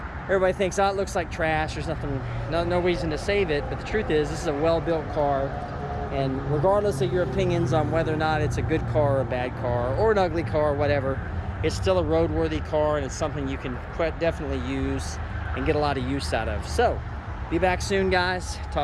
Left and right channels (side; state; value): both; identical; correlation 1.00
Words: everybody thinks, it looks like trash, there's no reason to save it. But the truth is, this is a well-built car, and regardless of your opinions on whether or not it's a good car or a bad car or an ugly car or whatever, it's still a roadworthy car, and it's something you can definitely use and get a lot of use out of. So be back soon, guys.